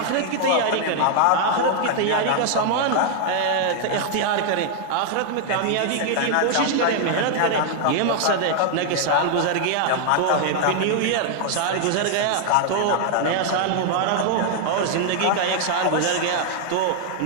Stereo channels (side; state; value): both; different; correlation 0.00